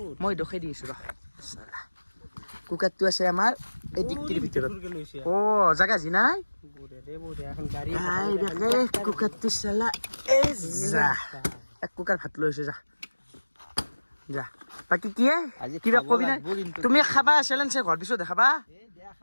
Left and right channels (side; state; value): both; inverted; correlation -1.00